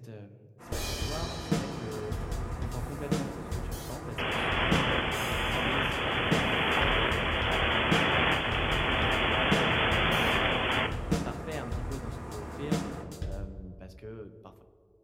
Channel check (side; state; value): both; identical; correlation 1.00